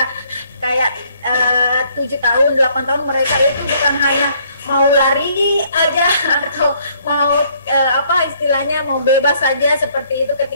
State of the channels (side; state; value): both; inverted; correlation -0.65